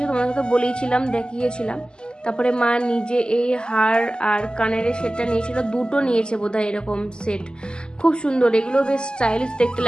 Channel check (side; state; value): right; late; 0.047 ms